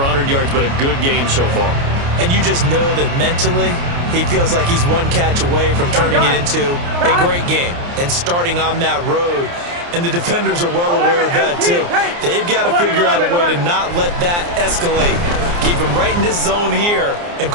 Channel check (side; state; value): left; late; 29 ms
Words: yards, but a good game so far. And you just know that mentally he feels like he's one catch away from turning it into a great game and starting on that road. And the defenders are well aware of that, too. They've got to figure out a way to not let that escalate. Keep him right in this zone here and